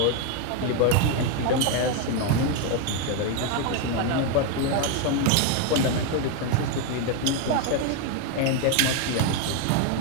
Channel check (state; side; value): different; both; correlation 0.01